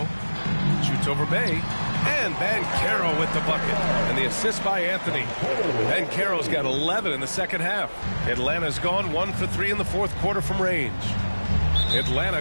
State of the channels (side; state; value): both; inverted; correlation -1.00